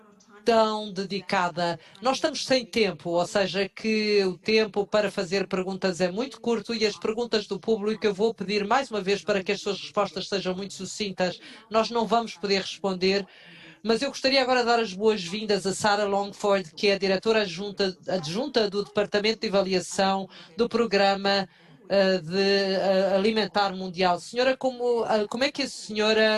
tão dedicada. Nós estamos sem tempo, ou seja, que o tempo para fazer perguntas é muito curto e as perguntas do público eu vou pedir mais uma vez para que as suas respostas sejam muito sucintas. Nós não vamos poder responder. Mas eu gostaria agora de dar as boas-vindas a Sarah Longford, que é a diretora adjunta do Departamento de Avaliação do Programa de Alimentar Mundial. Senhora, como é que a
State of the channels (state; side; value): identical; both; correlation 1.00